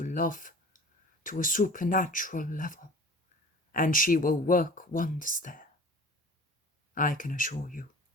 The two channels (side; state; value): both; normal; correlation 0.43